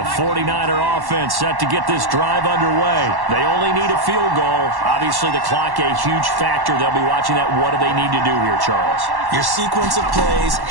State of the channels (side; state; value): left; late; 1.1 ms